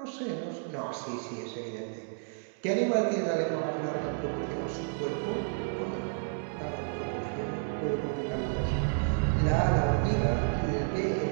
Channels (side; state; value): left; silent; digital silence